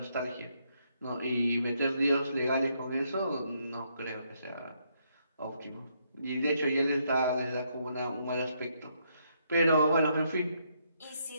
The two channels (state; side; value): inverted; both; correlation -0.74